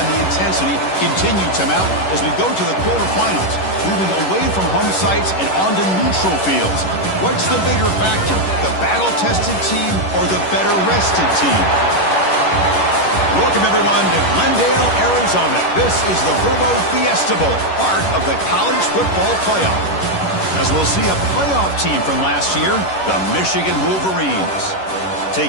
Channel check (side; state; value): right; late; 11 ms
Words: the intensity continue to mount as we go to the quarterfinals, moving away from home sites and onto neutral fields. What's the bigger factor, the battle-tested team or the better-rested team? Welcome, everyone, to Glendale, Arizona. This is the Verbo Fiesta Bowl, part of the college football playoff. As we'll see a playoff team from last year, the Michigan Wolverines,